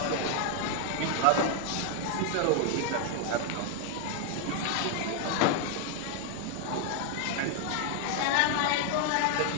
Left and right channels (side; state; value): both; different; correlation 0.00